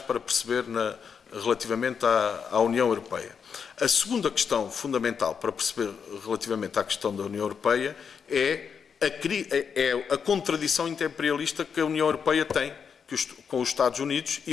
perceber relativamente à União Europeia. A segunda questão fundamental para perceber relativamente à questão da União Europeia é a contradição imperialista que a União Europeia tem com os Estados Unidos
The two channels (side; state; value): right; quieter; 6.6 dB